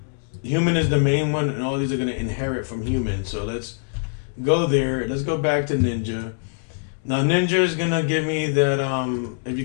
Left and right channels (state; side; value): silent; right; digital silence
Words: human is the main one, and all these are going to inherit from human. So let's go there. Let's go back to ninja. Now ninja is going to give me that, if